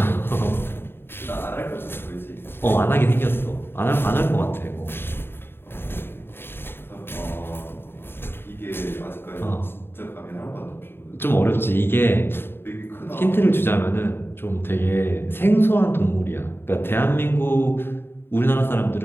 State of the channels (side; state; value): right; late; 0.11 ms